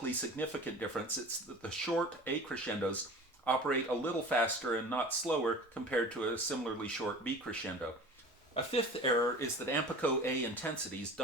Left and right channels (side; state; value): both; normal; correlation 0.39